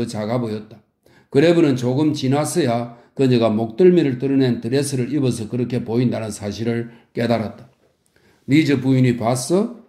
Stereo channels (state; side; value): identical; both; correlation 1.00